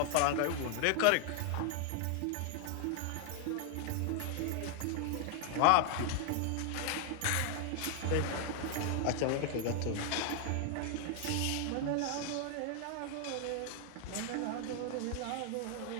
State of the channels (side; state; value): both; different; correlation 0.00